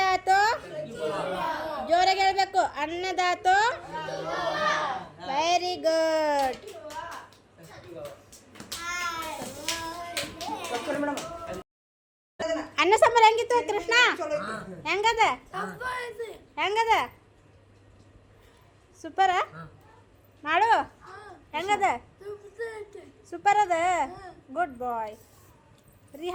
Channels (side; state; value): both; identical; correlation 1.00